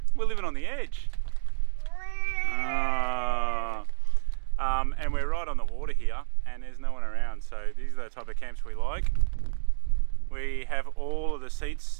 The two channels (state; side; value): silent; left; digital silence